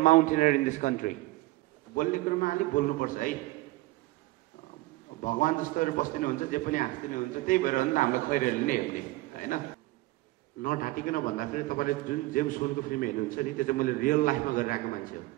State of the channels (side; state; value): left; quieter; 19.7 dB